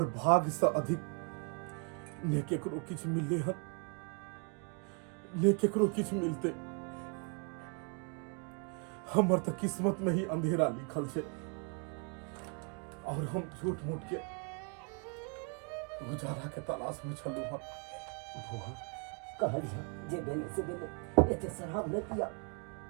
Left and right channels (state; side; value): quieter; left; 36.7 dB